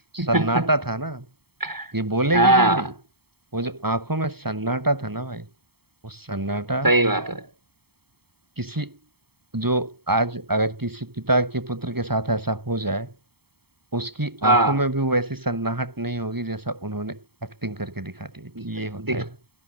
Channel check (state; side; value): late; left; 0.96 ms